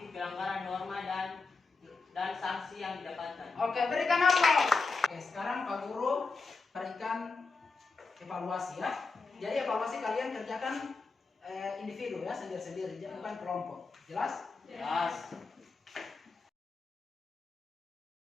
pelanggaran norma dan sanksi yang didapatkan. Oke, berikan aplaus. Oke, sekarang Pak Guru berikan evaluasi, ya. Jadi evaluasi kalian kerjakan individu, ya, sendiri-sendiri, bukan kelompok. Jelas? Jelas.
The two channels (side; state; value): right; quieter; 4.2 dB